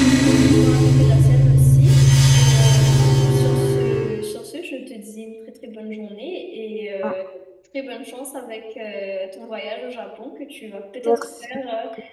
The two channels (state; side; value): identical; both; correlation 1.00